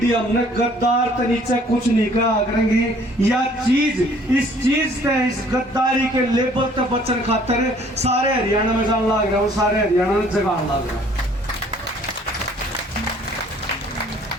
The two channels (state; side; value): normal; both; correlation 0.57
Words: हमने गद्दार तो नीचे कुछ नहीं कहा करेंगी। या चीज इस चीज से, इस गद्दारी के लेबल तक बचन खातर सारे हरियाणा में जान लग रहा हूँ, सारे हरियाणा में जगान लग रहा हूँ।